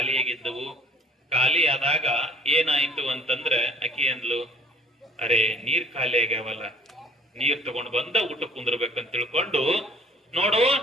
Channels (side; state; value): both; normal; correlation 0.53